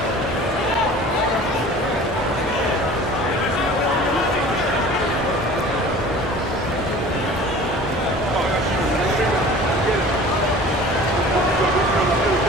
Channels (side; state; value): both; normal; correlation 0.43